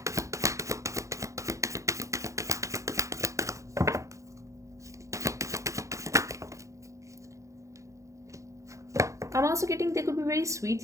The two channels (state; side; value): late; left; 0.15 ms